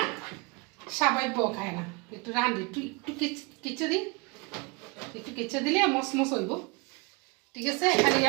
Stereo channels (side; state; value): left; quieter; 28.5 dB